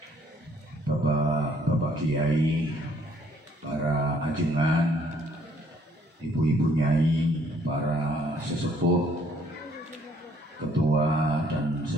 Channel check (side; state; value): both; normal; correlation 0.64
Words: bapak kiai, para ajengan, ibu-ibu nyai, para sesepuh, ketua dan